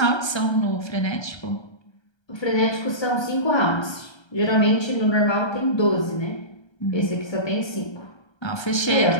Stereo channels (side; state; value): right; late; 1.3 ms